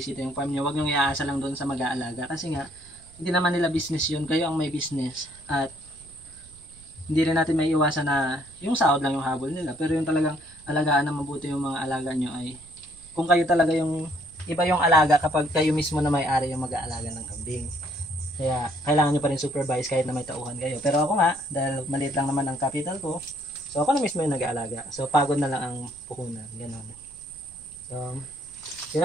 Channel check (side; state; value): right; noise; rumble, 23 dB below the sound